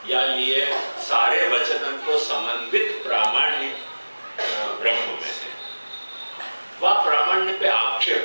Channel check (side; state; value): both; inverted; correlation -1.00